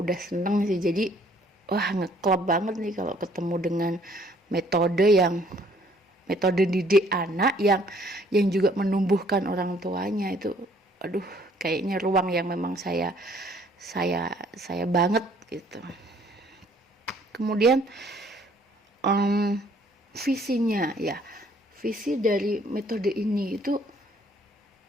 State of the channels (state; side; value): normal; both; correlation 0.61